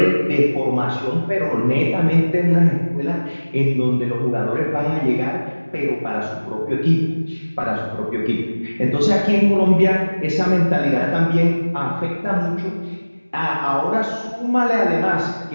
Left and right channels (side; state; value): both; inverted; correlation -1.00